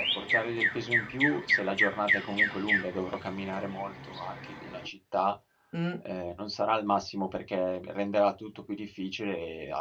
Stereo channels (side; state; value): both; identical; correlation 1.00